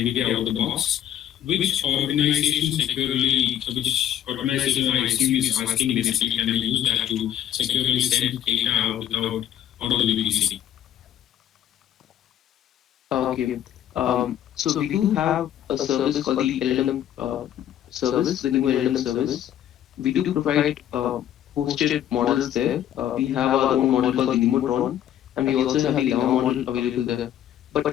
out of the box. Which organization I assume is asking basically can we use that to securely send data out of the VPC? Okay. So we do have a service called the LLM service, the new LLM service. We do provide hosted models there. We have our own model called the Nemotron, and we also have the Llama model available there.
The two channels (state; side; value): quieter; right; 11.1 dB